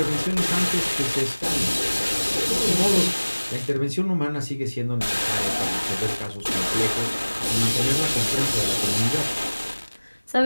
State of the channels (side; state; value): both; inverted; correlation -1.00